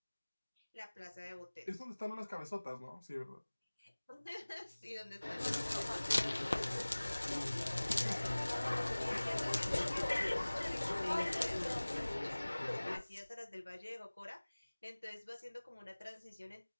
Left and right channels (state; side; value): inverted; both; correlation -1.00